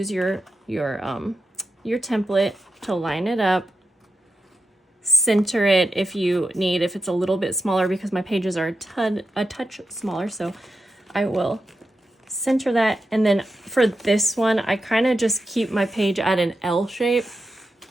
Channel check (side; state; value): both; normal; correlation 0.87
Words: your template to line it up, center it if you need, if it's a little bit smaller, because my pages are a touch smaller. So I will center that, and then for this one I kind of just keep my page at an L shape